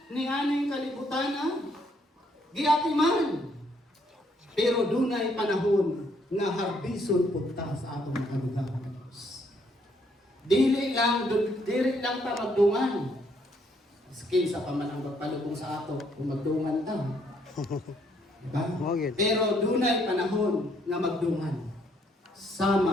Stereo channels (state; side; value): normal; both; correlation 0.70